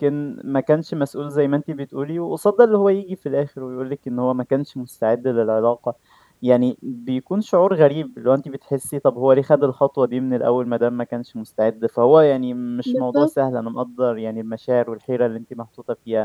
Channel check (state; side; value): identical; both; correlation 1.00